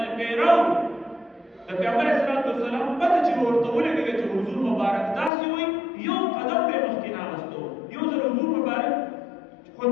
پیرو د پیغمبر اسلام والسلام پته چې ورته ولګي چې حضور مبارک داسې وي یو قدم به مخکې ناغستو. یو ځل حضور مبارک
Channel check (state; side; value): drops out; right; at 5.3 s